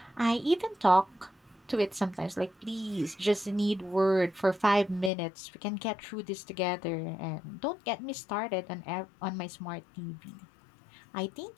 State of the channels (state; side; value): drops out; right; at 5.1 s